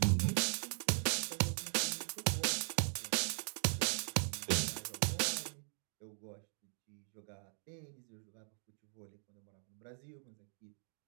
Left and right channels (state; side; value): silent; left; 51 dB below the other